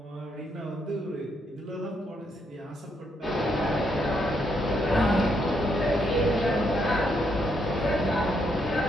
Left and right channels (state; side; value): normal; both; correlation 0.76